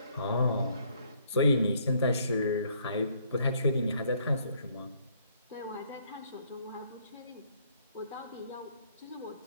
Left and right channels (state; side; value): inverted; both; correlation -0.66